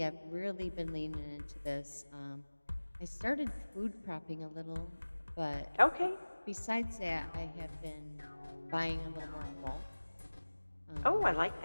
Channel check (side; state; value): both; inverted; correlation -1.00